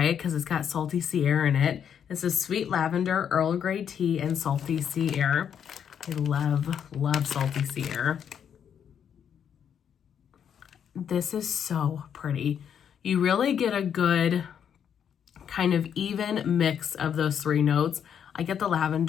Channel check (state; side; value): quieter; right; 8.3 dB